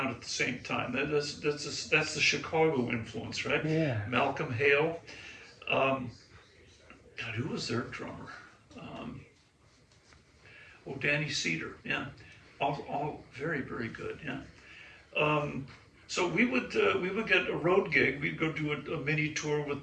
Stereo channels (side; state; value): both; identical; correlation 1.00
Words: at the same time. That's the Chicago influence, right? Yeah. Malcolm Hale. God, who was their drummer? Danny Cedar. Yeah, all very, very good. Yeah. So we would get a road gig. We'd go do a mini tour